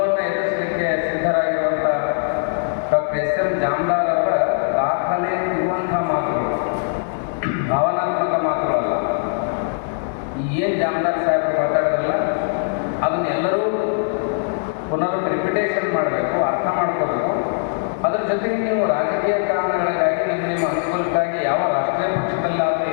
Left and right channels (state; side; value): silent; right; digital silence